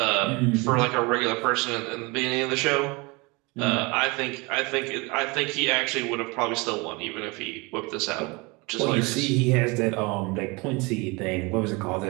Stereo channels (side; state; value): left; quieter; 26.6 dB